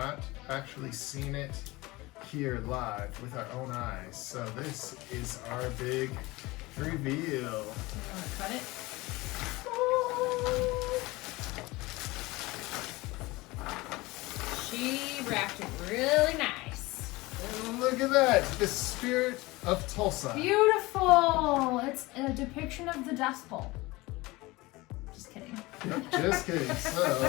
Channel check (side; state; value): right; quieter; 21.5 dB